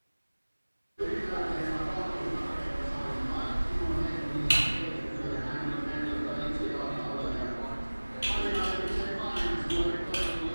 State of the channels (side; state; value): both; inverted; correlation -1.00